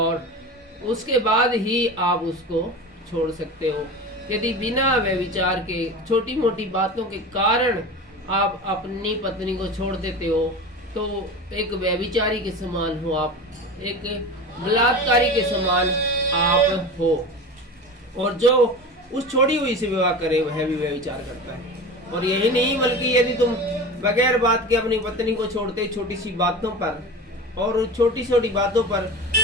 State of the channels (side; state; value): both; normal; correlation 0.30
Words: उसके बाद ही आप उसको छोड़ सकते हो। यदि बिना व्यभिचार के छोटी मोटी बातों के कारण आप अपनी पत्नी को छोड़ देते हो तो एक व्यभिचारी के समान हो आप, एक बलात्कारी के समान आप हो। और जो उस छोड़ी हुई से विवाह करे वह भी व्यभिचार करता है। और यही नहीं बल्कि यदि तुम बगैर बात के अपनी पत्नी को छोड़ते छोटी सी बातों पर और छोटी छोटी बातों पर